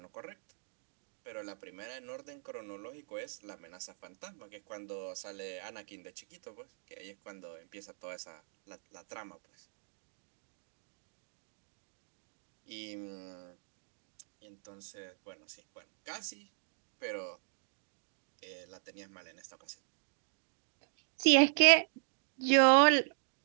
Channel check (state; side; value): silent; left; digital silence